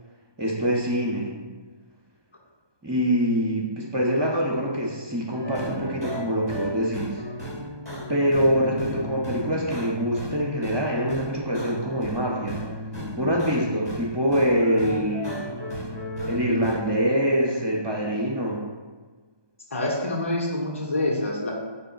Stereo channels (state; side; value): late; left; 1.2 ms